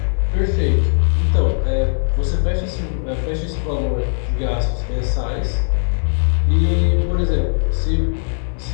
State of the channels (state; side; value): silent; right; digital silence